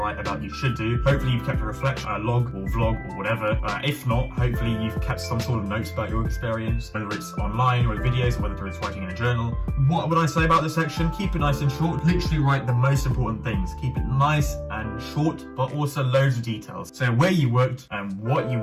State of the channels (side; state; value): both; identical; correlation 1.00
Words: about, you should do. Hopefully you've kept a reflection, a log or vlog or whatever. If not, hopefully you've kept some sort of notes about your work experience, whether it's online or videos, or whether it's writing in a journal. What would I say about this section? Keep it nice and short. Literally write the most important things. Keep it nice and short, but also loads of details. So where you worked, and what you